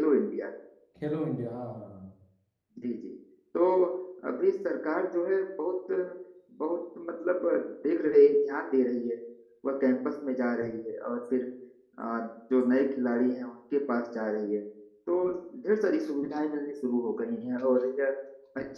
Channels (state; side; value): identical; both; correlation 1.00